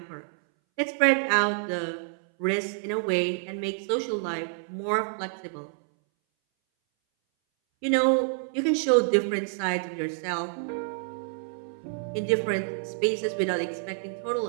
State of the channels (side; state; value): left; silent; 60 dB below the other